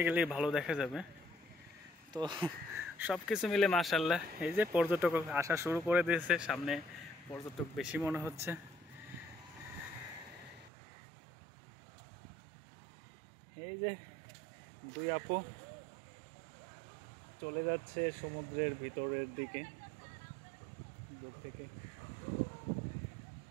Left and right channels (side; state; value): left; drops out; at 10.7 s